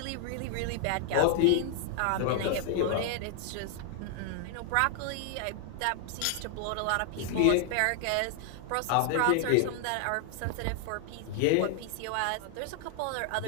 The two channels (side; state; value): both; different; correlation 0.00